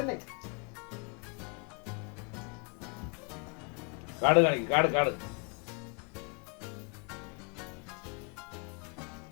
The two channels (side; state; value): right; quieter; 36.6 dB